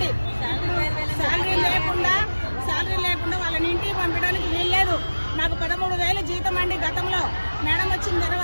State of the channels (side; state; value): both; inverted; correlation -1.00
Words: శాలరీ లేకుండా వాళ్ళని ఇంటికి పంపించడానికి వీల్లేదు. మాకు 13,000 జీతం అండి గతంలో. మేడం వచ్చిన